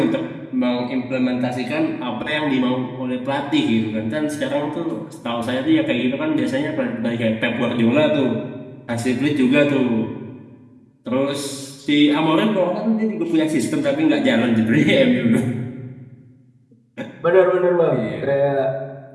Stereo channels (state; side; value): identical; both; correlation 1.00